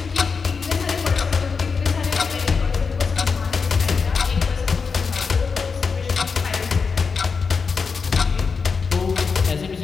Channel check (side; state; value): right; quieter; 5.2 dB